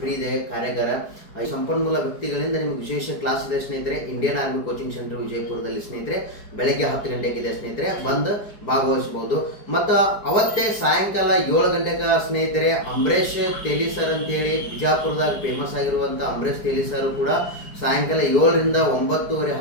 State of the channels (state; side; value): late; right; 4.8 ms